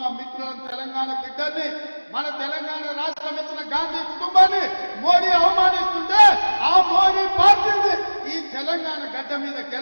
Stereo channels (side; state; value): both; inverted; correlation -1.00